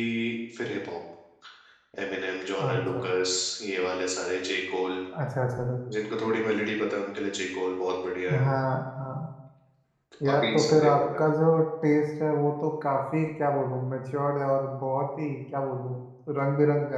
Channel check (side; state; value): both; identical; correlation 1.00